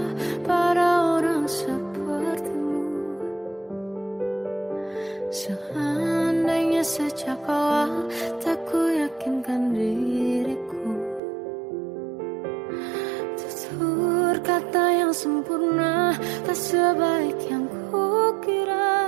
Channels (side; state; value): left; drops out; at 11.2 s